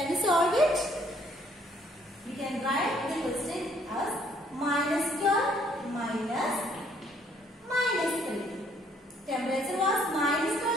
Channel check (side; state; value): both; normal; correlation 0.65